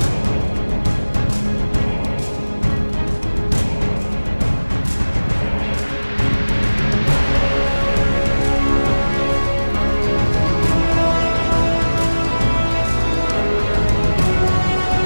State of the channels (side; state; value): both; inverted; correlation -1.00